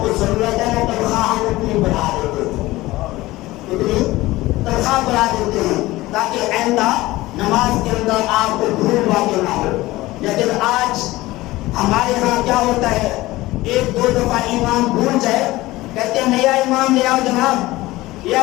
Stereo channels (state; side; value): quieter; right; 18.5 dB